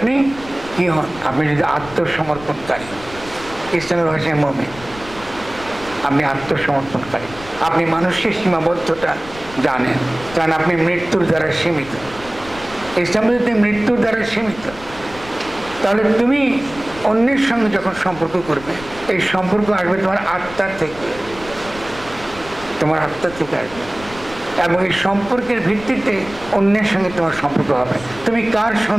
কি হন, আপনি যদি আত্মসমর্পণকারী, ইসলামের ভাষায় মুমিন, আপনি আত্মসমর্পণকারী, আপনি মানুষের সীমাবদ্ধতা জানেন, কারণ আপনি মৃত্যুর দ্বারা সীমিত। ইসলাম যদি মৃত্যুর দ্বারা সীমিত, তাহলে তুমি অন্যের সঙ্গে যখন সম্পর্ক করবে, এই সম্পর্ক আসবে তোমার আত্মার থেকে, আসবে, এবং এই সম্পর্কের ভিত্তিতে অন্যের সঙ্গে তোমার সম্পর্ক হবে। তুমি কার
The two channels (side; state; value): left; noise; rumble, 17 dB below the sound